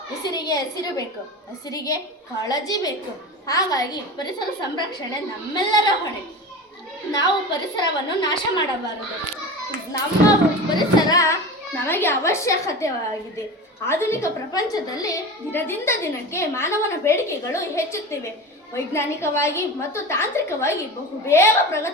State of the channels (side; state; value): both; normal; correlation 0.30